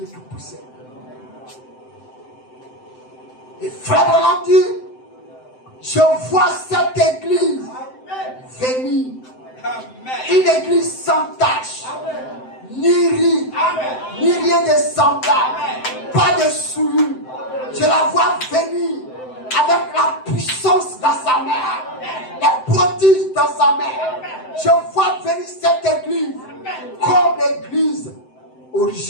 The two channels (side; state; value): right; late; 7.8 ms